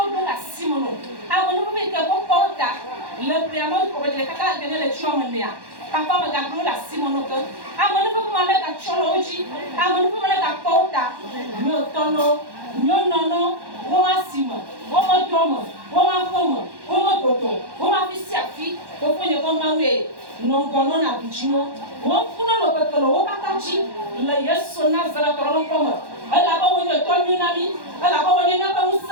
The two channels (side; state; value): left; late; 1.1 ms